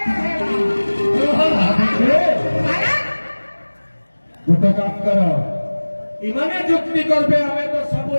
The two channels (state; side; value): inverted; both; correlation -1.00